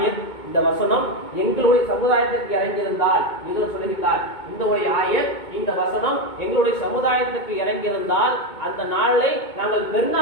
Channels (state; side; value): late; right; 2.2 ms